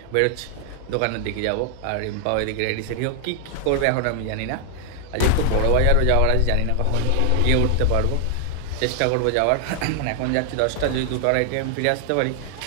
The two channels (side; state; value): both; different; correlation 0.00